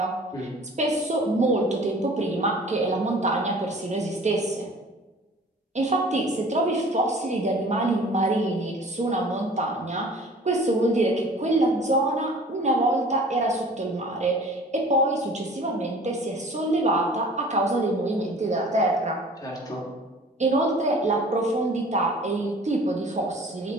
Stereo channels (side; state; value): both; normal; correlation 0.47